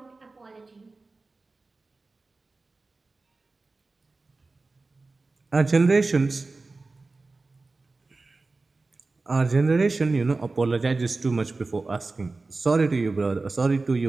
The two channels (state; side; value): quieter; left; 3.6 dB